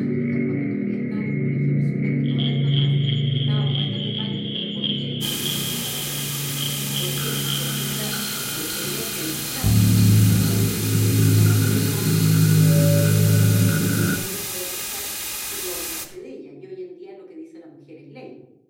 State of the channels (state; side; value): identical; both; correlation 1.00